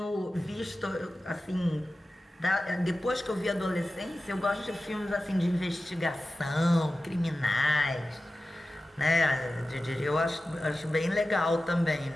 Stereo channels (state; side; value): normal; both; correlation 0.95